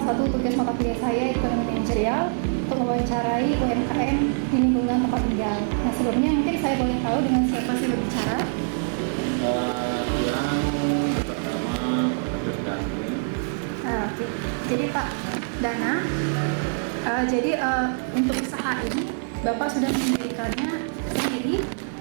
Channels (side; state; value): left; silent; 62 dB below the other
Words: satu tugas mata kuliah saya, ekonomi manajerial, untuk mewawancarai UMKM di lingkungan tempat tinggal. Nah, sebelumnya mungkin saya boleh tahu dengan siapa saya berbicara? Oke. Jadi Pak Dana, untuk usaha ini Bapak sudah mendirikannya sendiri